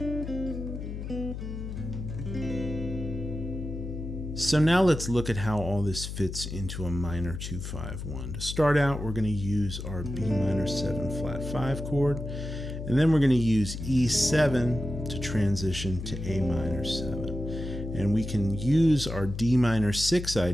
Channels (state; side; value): noise; left; hum, 7 dB below the sound